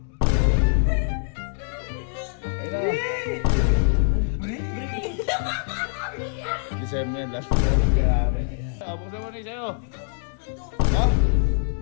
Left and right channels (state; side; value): silent; right; 62 dB below the other